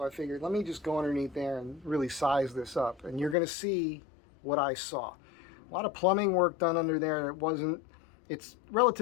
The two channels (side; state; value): right; drops out; at 3.4 s